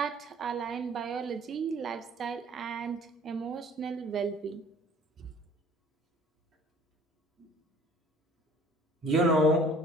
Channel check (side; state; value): both; normal; correlation 0.52